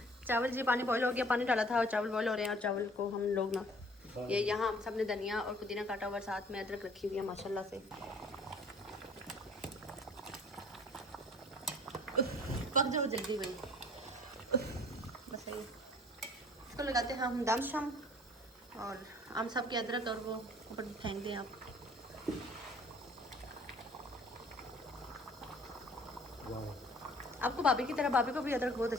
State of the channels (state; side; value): normal; both; correlation 0.53